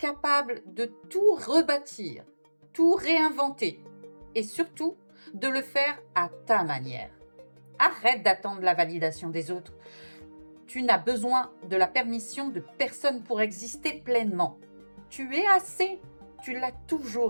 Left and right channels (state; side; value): inverted; both; correlation -1.00